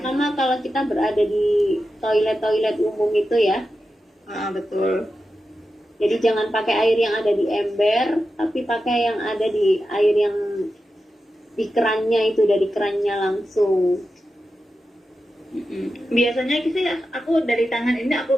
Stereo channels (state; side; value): normal; both; correlation 0.91